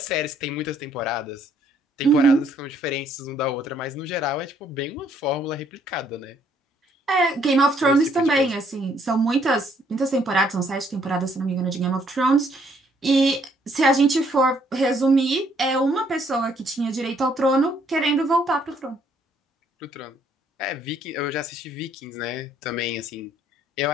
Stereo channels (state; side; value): normal; both; correlation 0.67